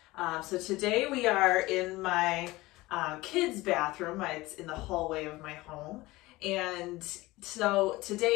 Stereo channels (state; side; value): quieter; right; 19.9 dB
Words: So today we are in my kids' bathroom. It's in the hallway of my home. And so